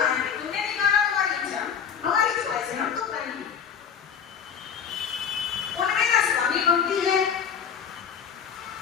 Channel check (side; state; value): right; quieter; 7.5 dB